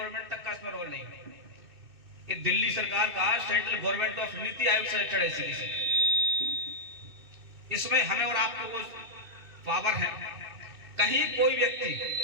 तक का इसमें रोल नहीं है। ये दिल्ली सरकार का central government of NITI Aayog से स्टेट है। इसमें हमें और आपको वो पावर है, कहीं कोई व्यक्ति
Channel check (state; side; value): late; left; 2.6 ms